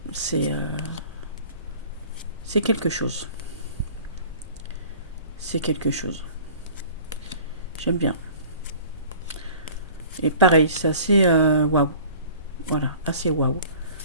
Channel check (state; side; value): inverted; both; correlation -0.46